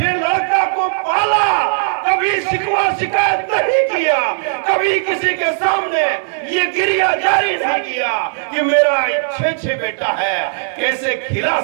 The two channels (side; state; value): left; silent; digital silence